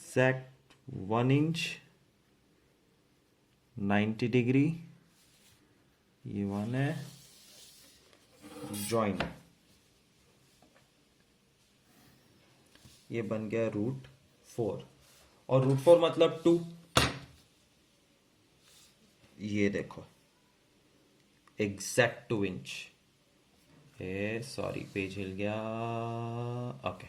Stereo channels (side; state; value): both; identical; correlation 1.00